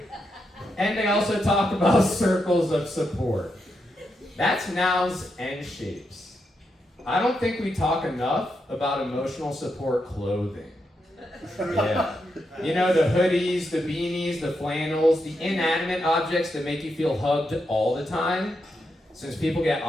And they also talk about circles of support. That's nouns and shapes. I don't think we talk enough about emotional support clothing. Yeah. You know, the hoodies, the beanies, the flannels, the inanimate objects that make you feel hugged all the time. Since people get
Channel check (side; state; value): both; normal; correlation 0.83